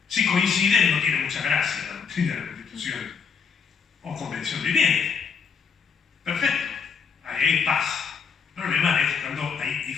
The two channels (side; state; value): right; quieter; 6.1 dB